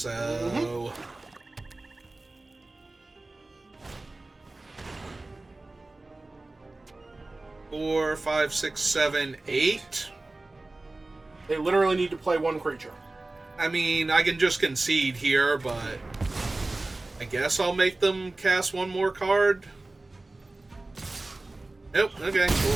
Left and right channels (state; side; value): quieter; left; 3.0 dB